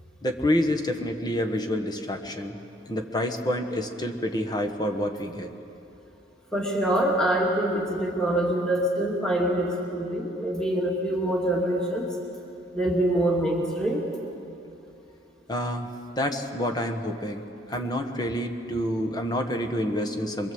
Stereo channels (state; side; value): normal; both; correlation 0.63